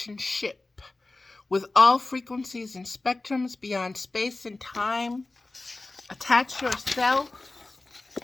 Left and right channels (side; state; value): right; quieter; 3.2 dB